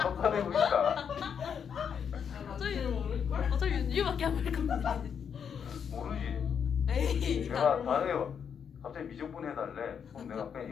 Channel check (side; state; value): right; quieter; 7.4 dB